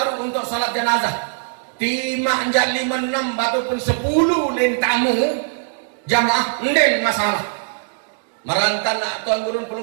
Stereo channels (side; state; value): left; silent; digital silence